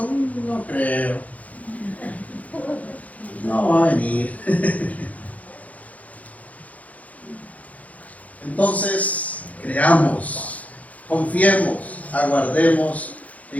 no creo, no va a venir. Entonces, creamos, confiemos, aguardemos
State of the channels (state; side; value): late; right; 0.071 ms